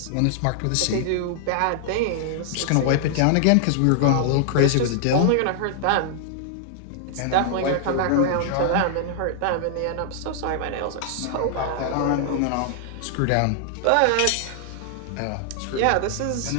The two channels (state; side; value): different; both; correlation 0.00